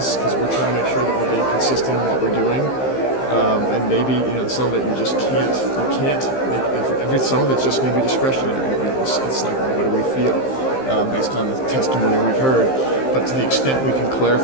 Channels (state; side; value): late; right; 15 ms